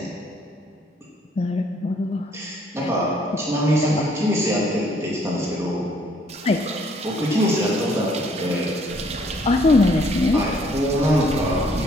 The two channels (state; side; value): normal; both; correlation 0.64